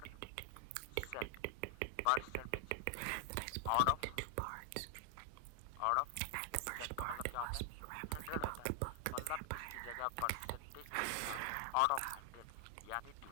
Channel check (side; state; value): both; different; correlation 0.00